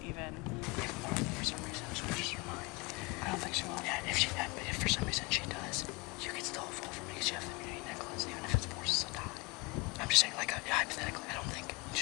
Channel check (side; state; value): right; quieter; 26.5 dB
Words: even. If Martha for some reason switches her mind, I don't think she will. Yeah, if for some reason she does, you can still vote for me because you have the immunity necklace, even if it forces a tie. I'm just saying, like, hypothetically, I don't think, you